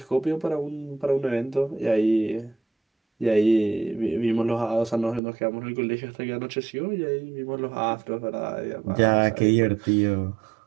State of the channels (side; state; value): left; drops out; at 5.2 s